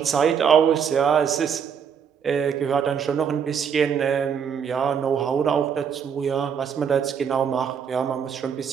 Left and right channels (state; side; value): quieter; left; 7.3 dB